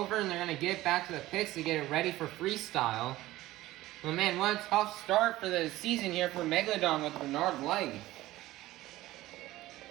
and they're going to get it back to the pits to get it ready for freestyle. Well, man, what a tough start for the season here for Megalodon with Bernard Light.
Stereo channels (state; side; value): quieter; left; 16.7 dB